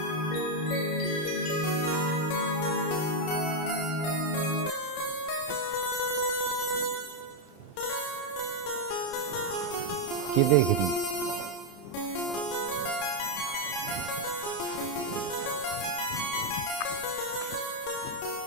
क्या देख रही?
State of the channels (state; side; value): late; right; 32 ms